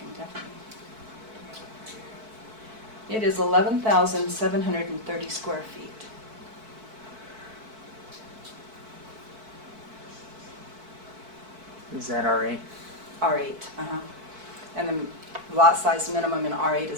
definitely bring it over here. It is 11,730 square feet. Is that R8? R8, and the lot size minimum in R8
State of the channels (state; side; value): late; left; 4.6 ms